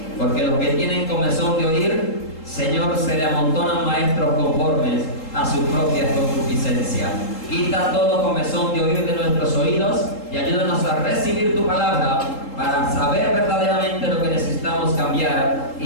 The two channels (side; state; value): right; late; 3.7 ms